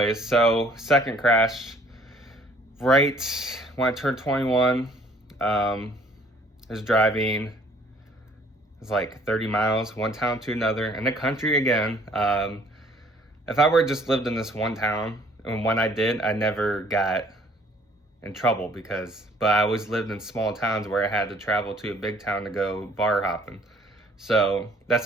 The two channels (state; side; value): normal; both; correlation 0.58